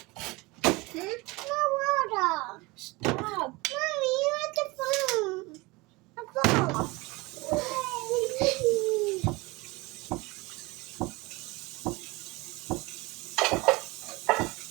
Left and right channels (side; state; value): left; quieter; 23.8 dB